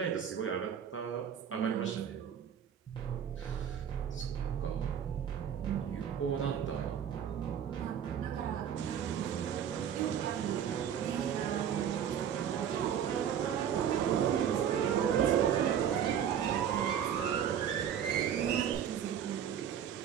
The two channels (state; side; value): quieter; left; 8.8 dB